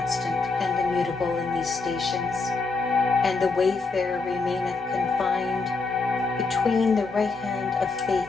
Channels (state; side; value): quieter; right; 4.0 dB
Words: and immutable in these stations, and the wayfarer remaineth confined between the right hand of faith